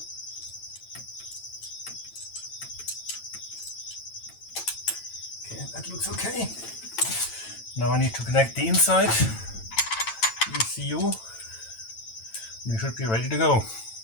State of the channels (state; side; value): late; right; 9.0 ms